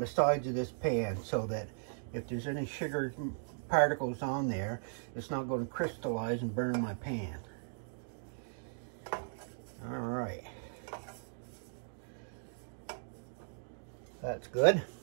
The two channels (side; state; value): left; silent; digital silence